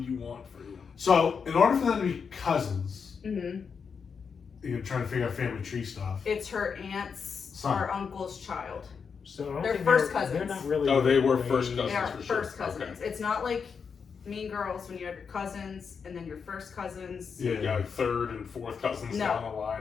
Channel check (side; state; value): right; quieter; 6.0 dB